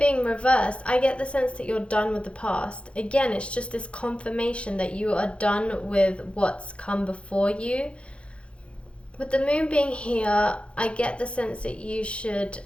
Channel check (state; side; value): late; right; 0.059 ms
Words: reversed, I get the sense that you're done with the past. Again, it's just this confirmation that you are done with what's come before you. with the moon being here, I get the sense that